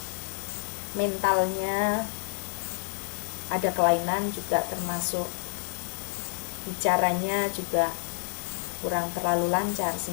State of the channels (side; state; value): right; silent; digital silence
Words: Mentalnya ada kelainan juga, termasuk bicaranya juga kurang terlalu lancar,